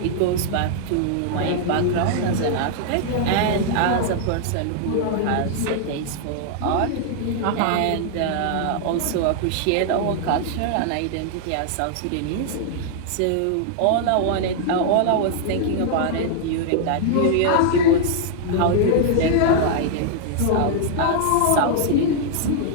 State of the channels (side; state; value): both; different; correlation -0.01